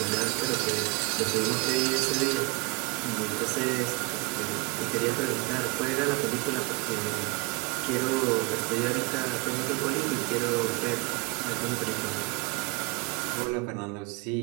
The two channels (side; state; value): left; quieter; 25.9 dB